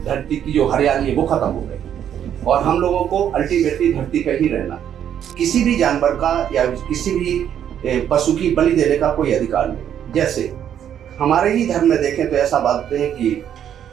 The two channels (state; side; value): quieter; left; 9.6 dB